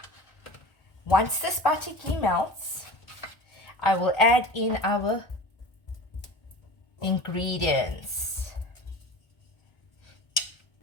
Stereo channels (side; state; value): right; late; 1.4 ms